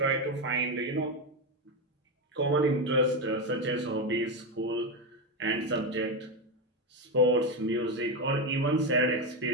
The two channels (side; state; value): both; normal; correlation 0.11